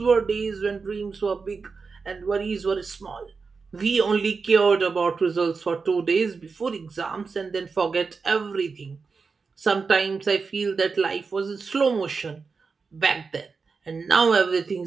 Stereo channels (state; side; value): quieter; left; 4.8 dB